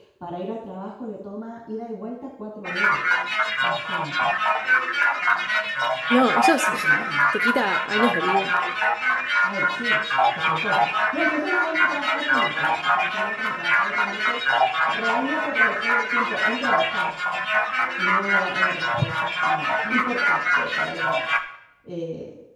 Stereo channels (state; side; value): identical; both; correlation 1.00